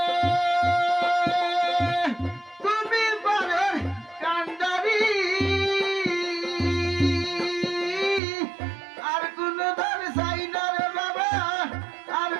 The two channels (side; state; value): left; drops out; at 8.2 s